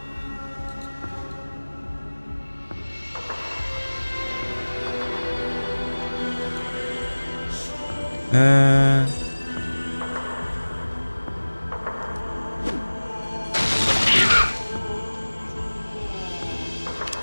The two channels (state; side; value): inverted; both; correlation -1.00